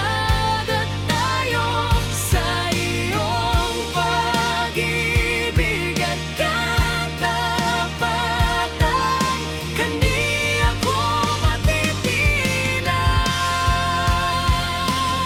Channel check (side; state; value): both; identical; correlation 1.00